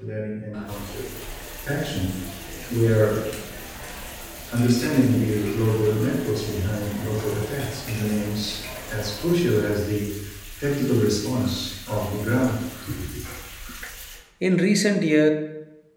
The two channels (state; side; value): identical; both; correlation 1.00